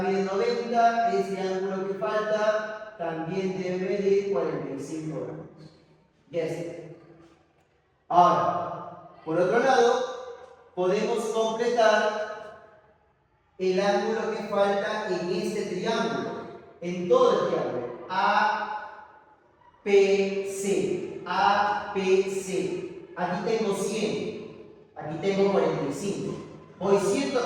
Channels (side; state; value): both; identical; correlation 1.00